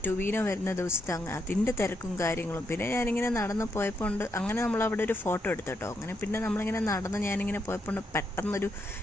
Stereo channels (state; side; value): normal; both; correlation 0.80